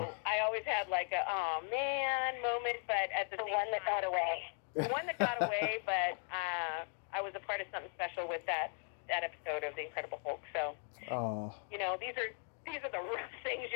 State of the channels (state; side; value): silent; right; 52 dB below the other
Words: I always had like a oh man moment, but at the one that got away. The one that got away, but I was a part of something special with that episode of The Incredible Hulk. So these are the rough things